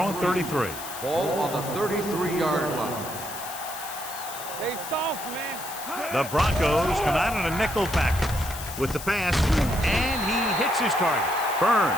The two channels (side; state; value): left; noise; hiss, 11 dB below the sound